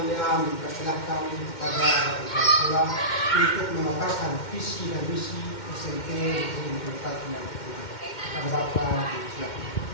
mempersilahkan kepada kepala sekolah untuk memaparkan visi dan misi SMP Negeri 54 Maluku Tengah. Kepada Bapak, silakan.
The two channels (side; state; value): right; late; 2.1 ms